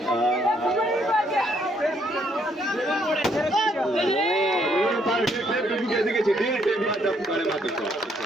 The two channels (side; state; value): both; normal; correlation 0.70